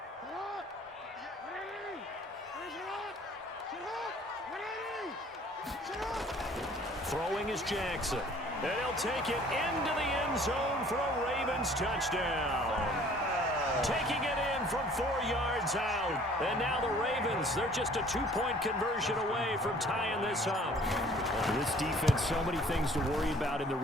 Throwing is Jackson. And he'll take it into the end zone for a Ravens touchdown. Taking it in from 4 yards out. And now the Ravens, they're just a 2-point conversion away from tying this up. This defense, so many things to worry about in the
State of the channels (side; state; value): both; normal; correlation 0.54